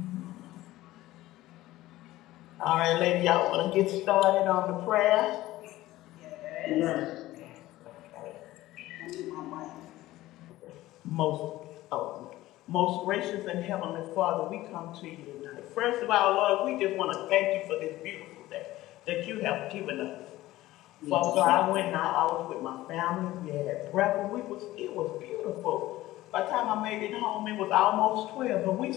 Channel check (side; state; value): right; quieter; 16.5 dB